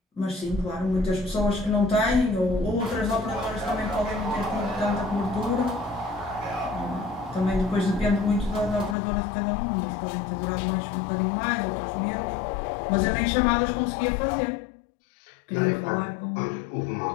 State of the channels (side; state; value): right; drops out; at 9.0 s